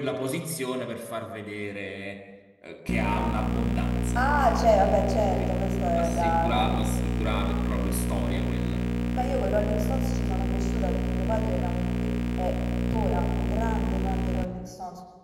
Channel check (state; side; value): identical; both; correlation 1.00